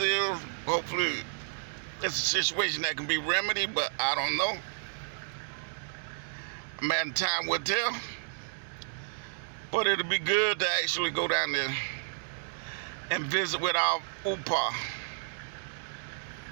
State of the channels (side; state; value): left; silent; digital silence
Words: Hopefully, it's a situation that can be remedied, but I don't know. Man, time will tell. But it'll be good to actually go down there and visit with our UPA